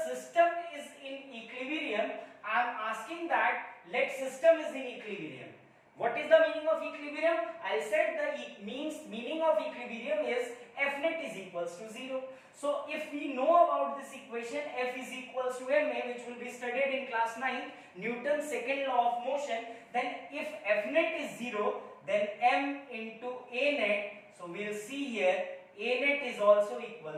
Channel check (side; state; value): both; identical; correlation 1.00